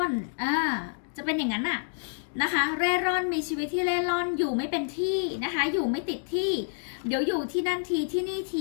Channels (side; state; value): right; silent; digital silence